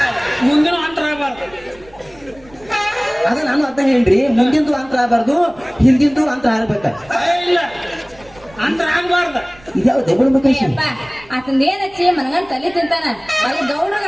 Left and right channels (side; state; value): right; noise; rumble, 25 dB below the sound